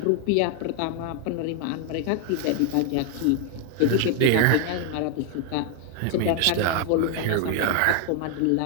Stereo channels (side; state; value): both; different; correlation 0.00